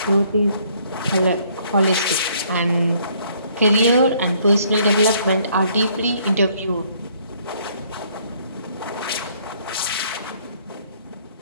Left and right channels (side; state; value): both; inverted; correlation -0.64